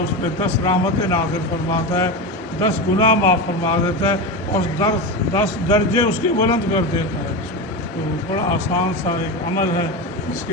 اس پہ 10 رحمتیں نازل فرماتا ہے، 10 گناہ معاف فرما دیتا ہے اور 10 درجے اس کے بلند کر دیتا ہے۔ تو بڑا آسان سا ایک عمل ہے جس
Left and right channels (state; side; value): normal; both; correlation 0.19